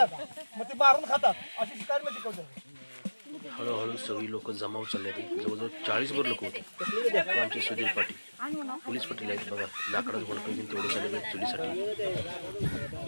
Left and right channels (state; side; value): inverted; both; correlation -1.00